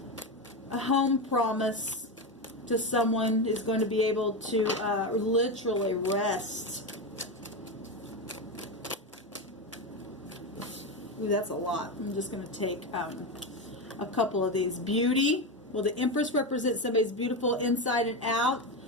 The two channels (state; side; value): normal; both; correlation 0.15